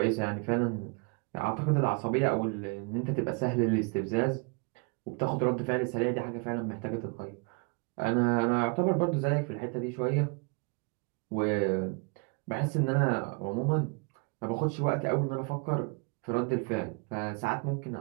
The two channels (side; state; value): left; quieter; 32.4 dB